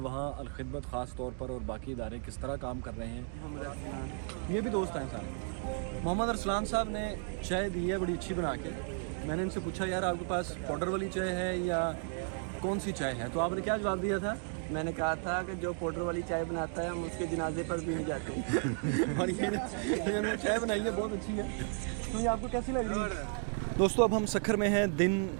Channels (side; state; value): left; silent; 55 dB below the other